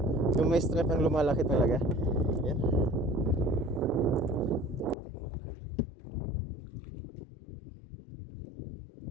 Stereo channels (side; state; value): right; drops out; at 5.0 s